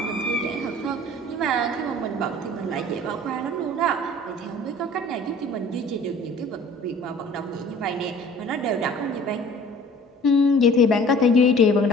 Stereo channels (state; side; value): normal; both; correlation 0.48